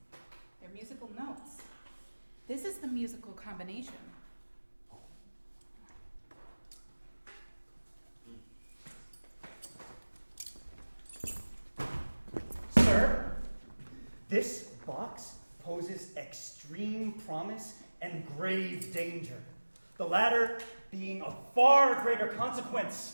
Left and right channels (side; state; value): both; inverted; correlation -1.00